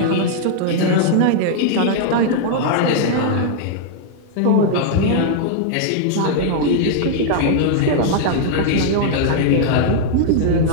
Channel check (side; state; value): both; different; correlation -0.01